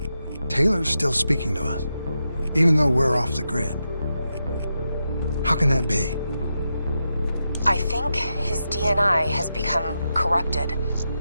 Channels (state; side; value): inverted; both; correlation -0.87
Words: Taylor's still speaking to us, even though we're off the grid. How can that be? I think his DNI has become corrupted.